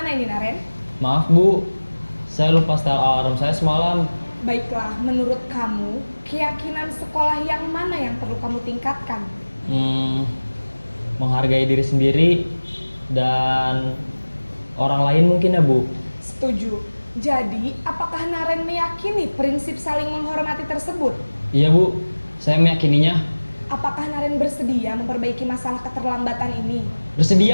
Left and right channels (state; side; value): inverted; both; correlation -1.00